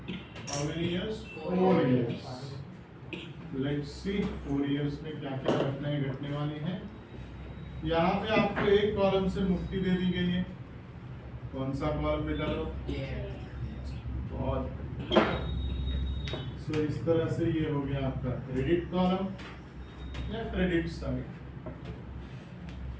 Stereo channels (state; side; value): identical; both; correlation 1.00